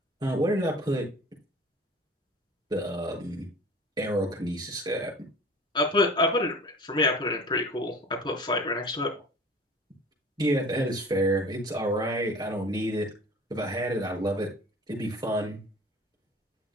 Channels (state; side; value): normal; both; correlation 0.42